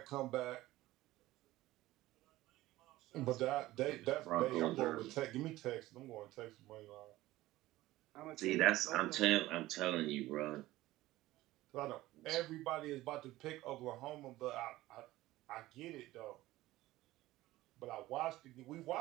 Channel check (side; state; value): left; quieter; 17.0 dB